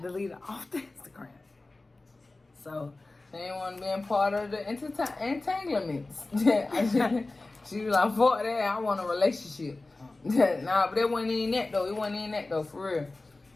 deleted off the Instagram. So she ain't want to be a part of the entanglements. She was like, fuck that, I want a relationship. Nah, but it wasn't even that though. It wasn't even that though, for real.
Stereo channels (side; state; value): right; quieter; 3.1 dB